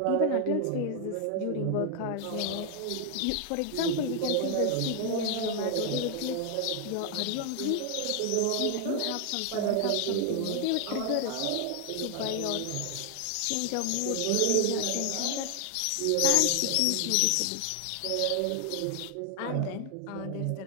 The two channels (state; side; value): different; both; correlation 0.00